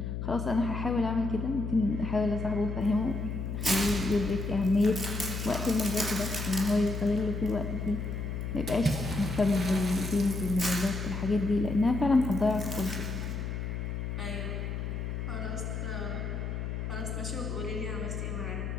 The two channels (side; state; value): left; noise; hum, 4 dB below the sound